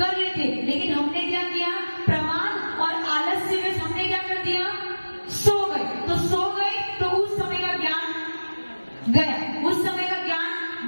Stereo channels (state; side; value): inverted; both; correlation -1.00